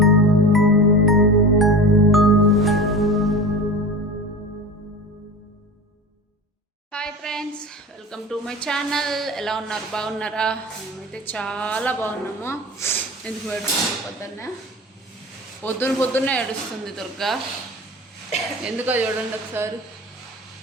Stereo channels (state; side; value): normal; both; correlation 0.32